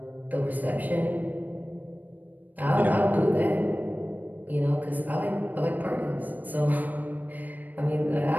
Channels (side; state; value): left; late; 0.084 ms